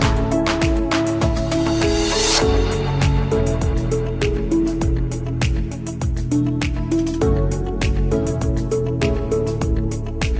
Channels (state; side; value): identical; both; correlation 1.00